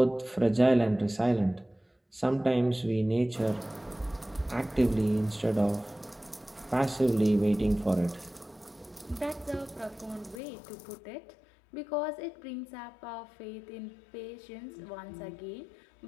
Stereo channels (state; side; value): drops out; right; at 10.4 s